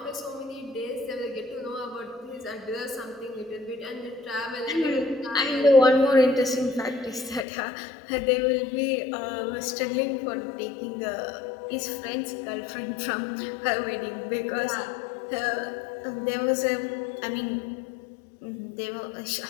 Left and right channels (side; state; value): right; drops out; at 7.5 s